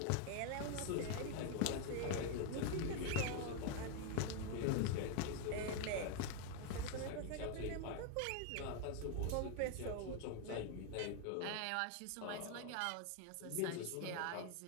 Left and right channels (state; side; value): different; both; correlation 0.01